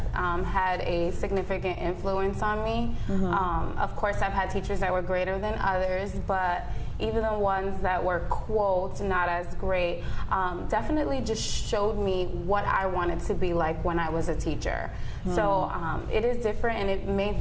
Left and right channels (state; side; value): identical; both; correlation 1.00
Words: had a significant influence on me. Of course, I've had teachers that were greater than others, but even the ones that were, quote, not as great, definitely just showed me what I wanted to be like when I was a teacher. So it is different, and it may